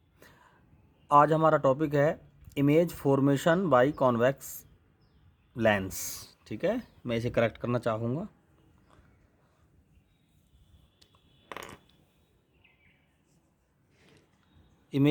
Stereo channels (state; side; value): identical; both; correlation 1.00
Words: आज हमारा टॉपिक है image formation by convex lens. ठीक है, मैं इसे करेक्ट करना चाहूँगा।